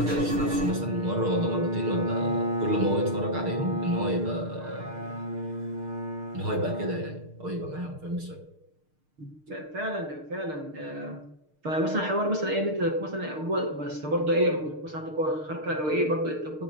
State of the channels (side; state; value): left; late; 6.6 ms